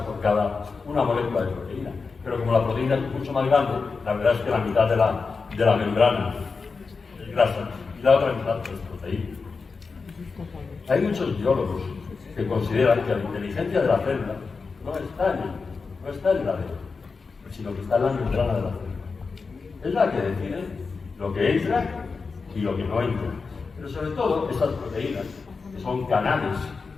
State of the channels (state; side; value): quieter; right; 4.7 dB